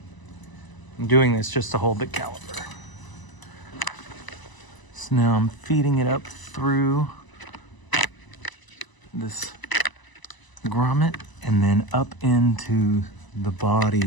I'm doing this just to hold the caliper. So now I'm feeding it up through this grommet and then up into the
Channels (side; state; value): right; late; 1.0 ms